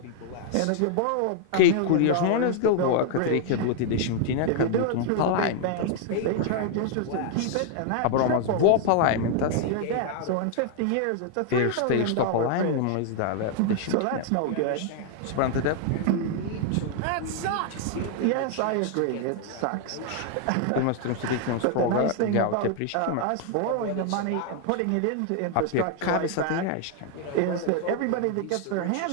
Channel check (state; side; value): different; both; correlation 0.00